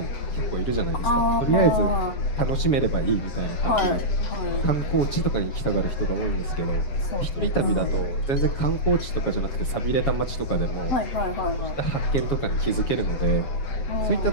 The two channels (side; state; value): right; late; 7.2 ms